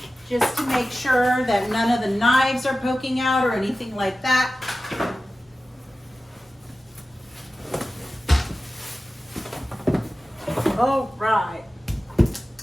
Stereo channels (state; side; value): normal; both; correlation 0.95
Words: just to make sure that none of the knives are poking out or anything like that. All right.